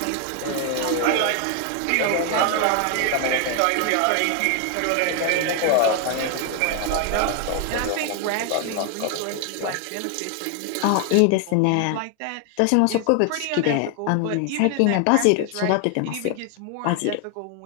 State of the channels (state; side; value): different; both; correlation 0.00